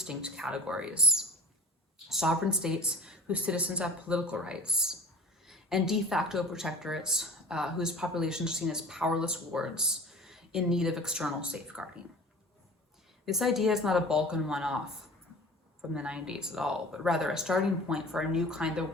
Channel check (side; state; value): both; normal; correlation 0.42